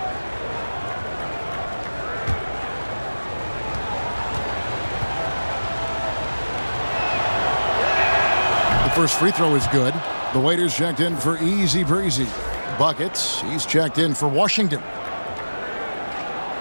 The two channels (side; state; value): both; inverted; correlation -1.00